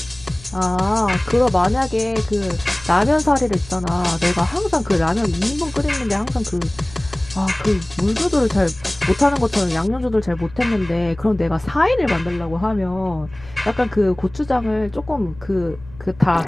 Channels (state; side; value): noise; left; rumble, 20 dB below the sound